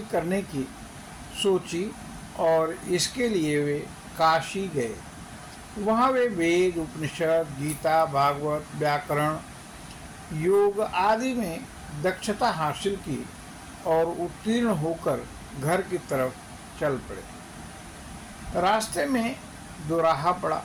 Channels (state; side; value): identical; both; correlation 1.00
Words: करने की सोची और इसके लिए वे काशी गए। वहाँ वे वेद, उपनिषद, गीता, भागवत, व्याकरण, योग आदि में दक्षता हासिल की और उत्तीर्ण होकर घर की तरफ चल पड़े। रास्ते में दोराहा पड़ा।